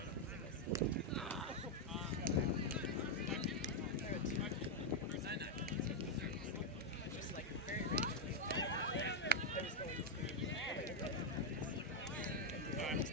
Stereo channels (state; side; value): normal; both; correlation 0.01